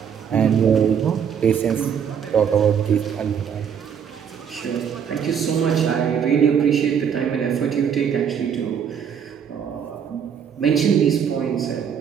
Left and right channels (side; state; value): left; quieter; 7.7 dB